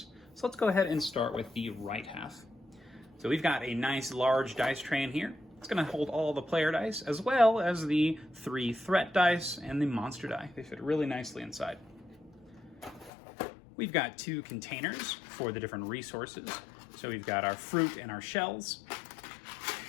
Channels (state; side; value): drops out; right; at 13.1 s